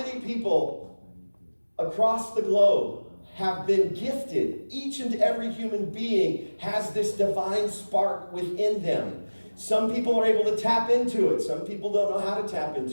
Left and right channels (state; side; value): inverted; both; correlation -1.00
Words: people across the globe have been gifted? Each and every human being has this divine spark within them. Some people are able to tap into it. Some people don't know how to tap